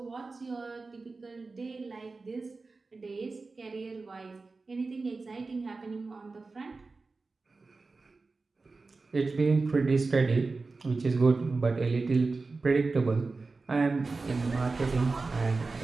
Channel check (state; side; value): quieter; left; 3.8 dB